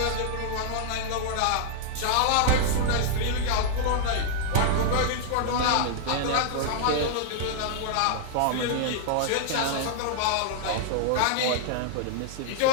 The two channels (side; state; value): both; different; correlation -0.01